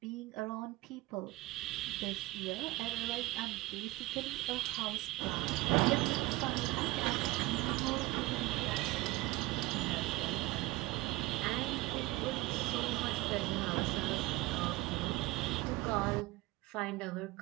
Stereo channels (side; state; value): left; quieter; 19.9 dB